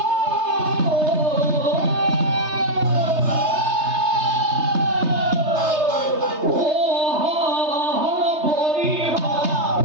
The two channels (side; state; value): left; late; 3.3 ms